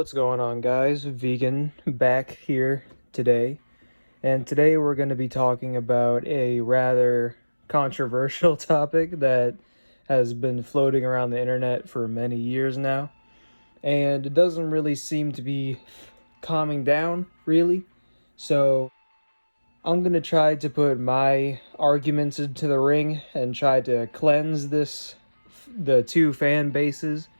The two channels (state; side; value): inverted; both; correlation -1.00